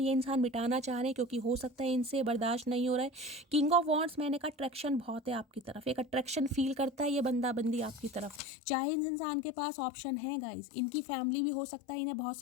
इंसान मिटाना चाह रहे हैं क्योंकि हो सकता है इनसे बर्दाश्त नहीं हो रहा है। किंग ऑफ वॉन्ड्स, मैंने कहा अट्रैक्शन बहुत है आपकी तरफ, एक अट्रैक्शन फील करता है ये बंदा बंदी आपकी तरफ। चाहे इस इंसान के पास ऑप्शन है गाइज, इनकी फैमिली भी हो सकता है इन्हें बहुत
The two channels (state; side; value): drops out; right; at 8.4 s